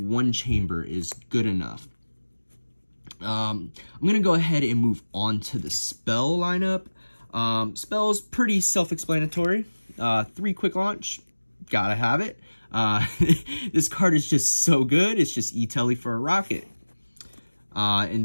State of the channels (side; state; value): both; inverted; correlation -1.00